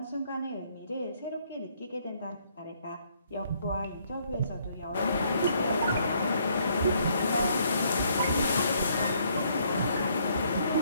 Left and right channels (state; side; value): inverted; both; correlation -0.68